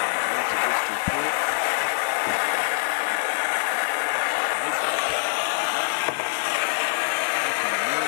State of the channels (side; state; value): right; silent; digital silence